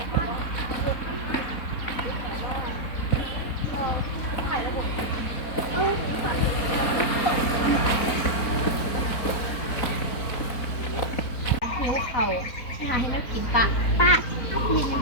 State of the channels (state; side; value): late; right; 4.0 ms